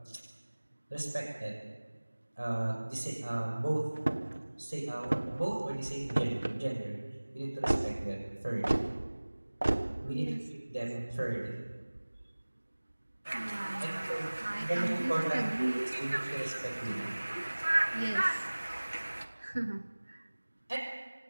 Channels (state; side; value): inverted; both; correlation -1.00